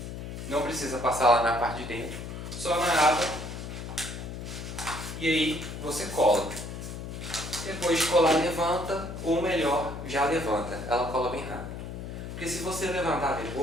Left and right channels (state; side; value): noise; left; hum, 8 dB below the sound